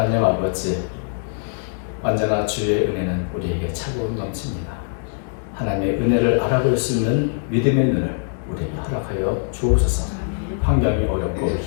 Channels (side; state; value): right; silent; digital silence